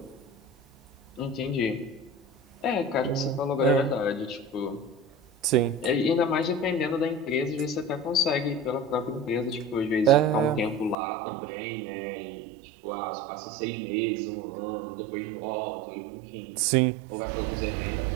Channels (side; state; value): left; drops out; at 11.0 s